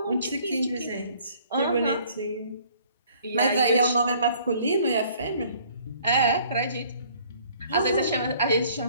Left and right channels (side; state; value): both; inverted; correlation -0.57